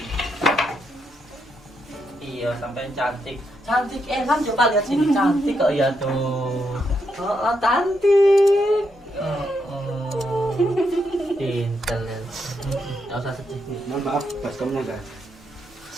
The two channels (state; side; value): normal; both; correlation 0.80